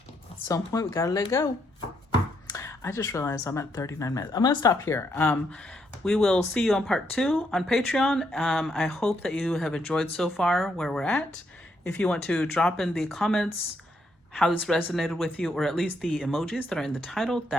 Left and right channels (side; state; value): both; normal; correlation 0.76